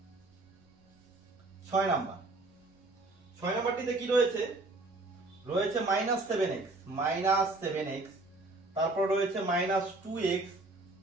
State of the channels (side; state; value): left; quieter; 3.0 dB